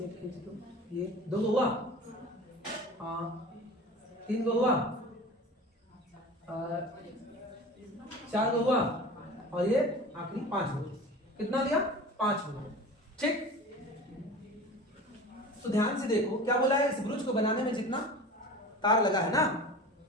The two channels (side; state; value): both; normal; correlation 0.36